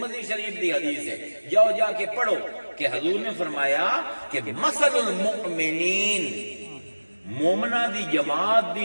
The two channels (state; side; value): inverted; both; correlation -1.00